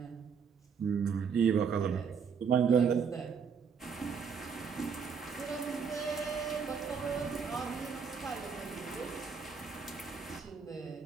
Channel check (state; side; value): quieter; left; 6.3 dB